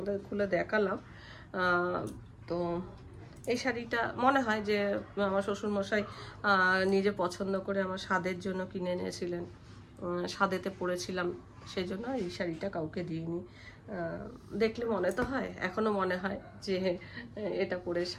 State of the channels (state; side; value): identical; both; correlation 1.00